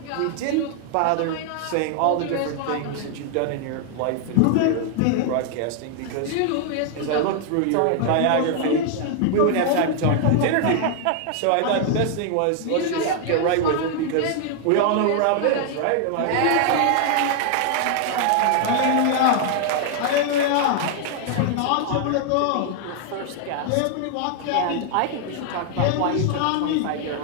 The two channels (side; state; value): both; different; correlation 0.00